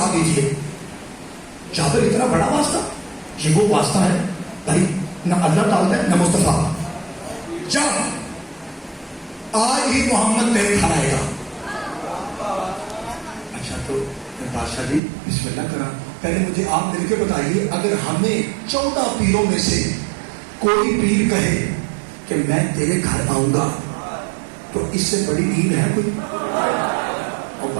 دیجیے. جابر اتنا بڑا واسطہ, یہ وہ واسطہ ہے بھائی نہ اللہ ڈالتا ہے نہ مصطفیٰ. جا آج ہی محمد تیرے گھر آئے گا. اچھا تو بادشاہ جی بسم اللہ کرا. پہلے مجھے آپ مل کے بتائیے, اگر ہمیں 14 پیروں میں سے کوئی پیر کہے کہ میں تیرے گھر آؤں گا تو اس سے بڑی عید ہے کوئی؟ اور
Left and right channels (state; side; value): drops out; left; at 15.0 s